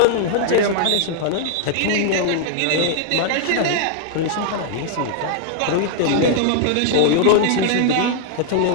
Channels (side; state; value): both; different; correlation 0.00